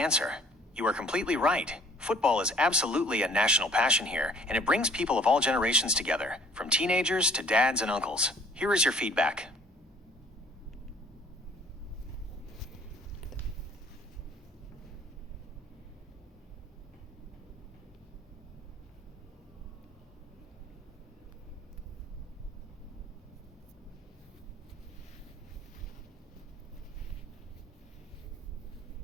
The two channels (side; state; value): both; normal; correlation 0.56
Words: You are completely right. Football is absolutely a national passion here, and it brings people of all generations together, from teenagers to dads and uncles. Here is your feedback.